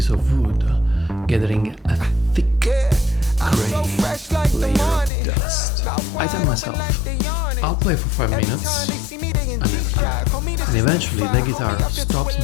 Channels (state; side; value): drops out; right; at 5.1 s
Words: of wood gathering a thick gray layer of dust. I tell myself, I'll play for 5 minutes, I never do. And eventually the guitar stops